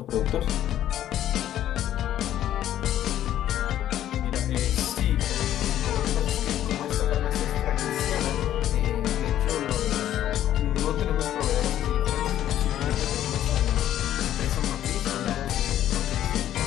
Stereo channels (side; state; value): right; quieter; 11.9 dB